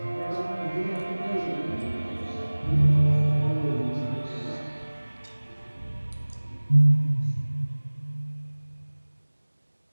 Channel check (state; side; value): inverted; both; correlation -1.00